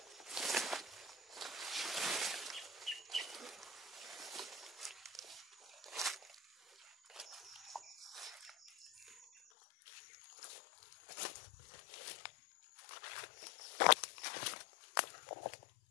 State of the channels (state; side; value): drops out; right; at 9.4 s